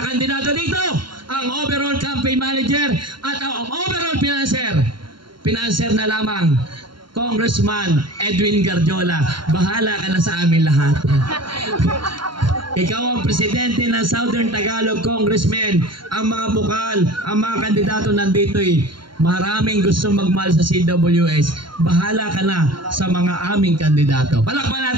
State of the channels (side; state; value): left; late; 0.73 ms